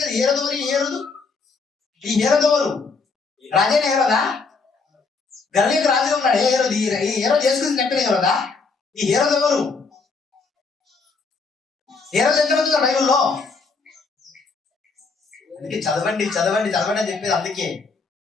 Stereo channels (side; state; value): right; quieter; 4.4 dB